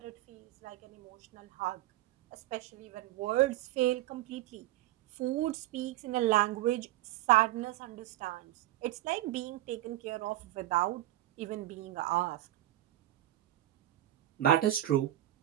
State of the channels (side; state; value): left; quieter; 15.0 dB